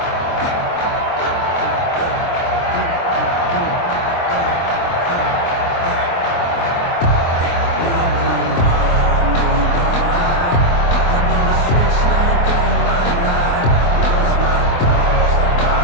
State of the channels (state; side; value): late; right; 23 ms